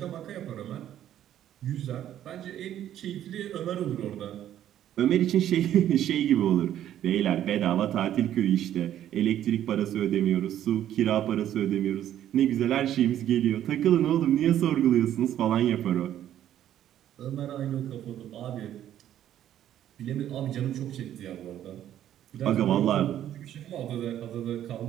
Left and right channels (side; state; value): left; quieter; 11.4 dB